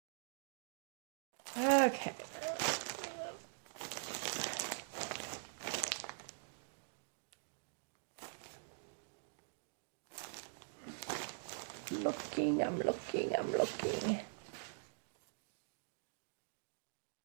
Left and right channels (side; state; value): left; silent; digital silence